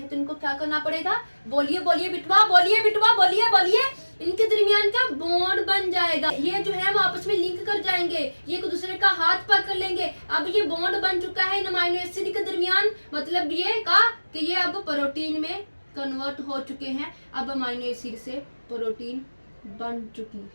तो इनको क्या करना पड़ेगा, बोलिए बिटवा, बोलिए। इनके दरमियान क्या बॉन्ड बन जाएगा, ये जो है वो आपस में लिंक कर जाएंगे, ये एक दूसरे का हाथ पकड़ लेंगे। अब ये बॉन्ड बन चुका है इन अमीनो एसिड के दरमियान, मतलब ये का कि ये अब प्रोटीन में कन्वर्ट हो चुके हैं। अब अमीनो एसिड से प्रोटीन बन चुकी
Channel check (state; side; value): inverted; both; correlation -1.00